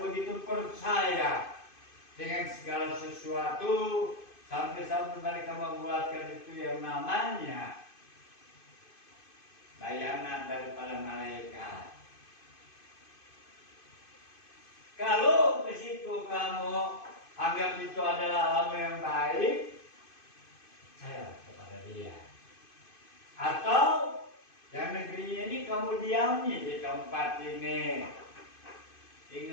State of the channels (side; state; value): right; late; 2.5 ms